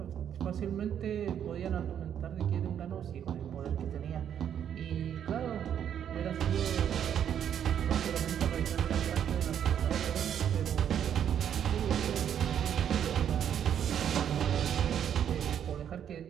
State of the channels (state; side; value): quieter; left; 9.2 dB